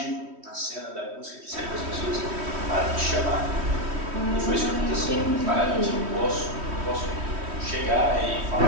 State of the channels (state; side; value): late; left; 3.1 ms